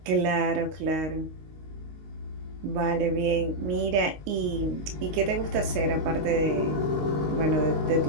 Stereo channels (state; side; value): late; left; 19 ms